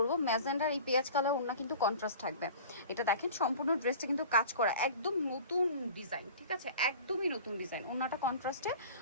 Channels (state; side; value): inverted; both; correlation -0.40